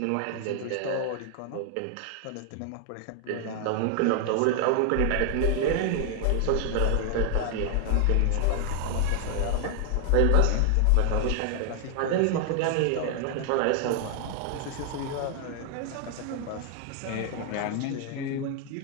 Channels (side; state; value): both; different; correlation 0.00